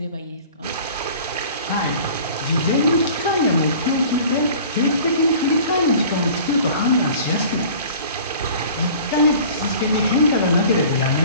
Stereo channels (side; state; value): both; inverted; correlation -0.45